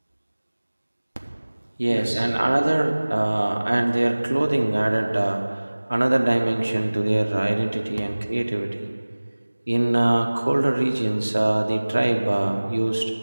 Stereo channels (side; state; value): both; inverted; correlation -1.00